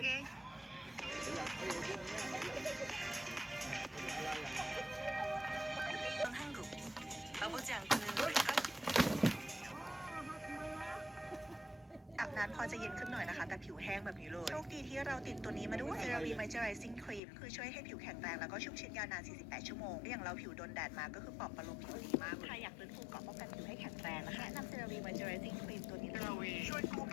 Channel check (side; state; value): right; drops out; at 17.2 s